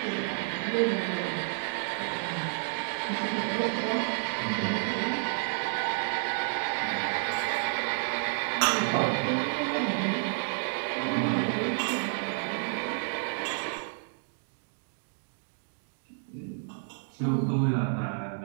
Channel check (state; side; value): silent; left; 58 dB below the other